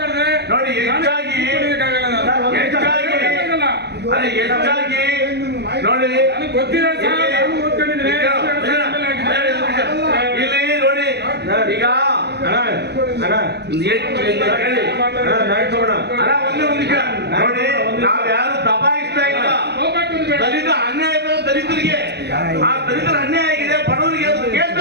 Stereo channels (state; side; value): late; left; 0.49 ms